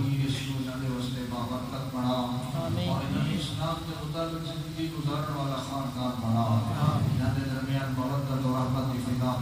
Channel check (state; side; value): identical; both; correlation 1.00